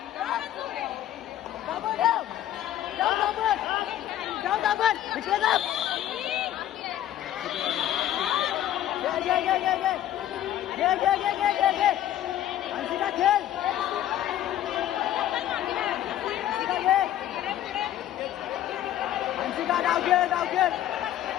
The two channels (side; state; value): right; quieter; 12.2 dB